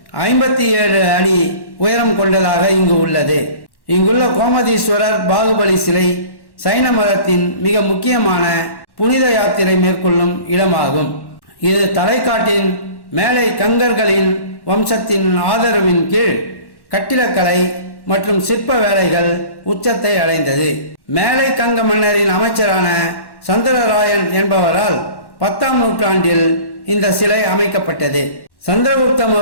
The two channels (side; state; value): right; late; 1.1 ms